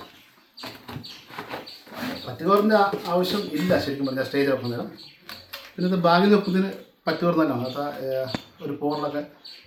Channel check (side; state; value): both; identical; correlation 1.00